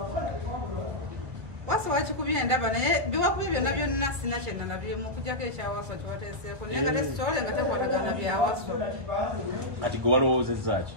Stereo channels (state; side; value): late; left; 2.2 ms